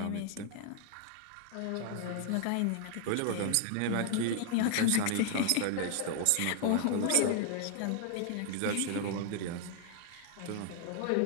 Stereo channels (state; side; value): different; both; correlation 0.00